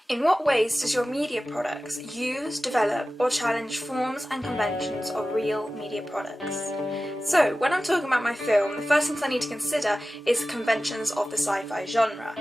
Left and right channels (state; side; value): normal; both; correlation 0.95